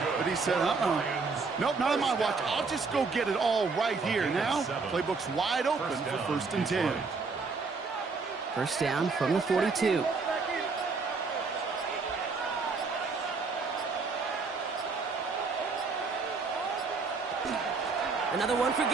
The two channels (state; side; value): quieter; left; 4.5 dB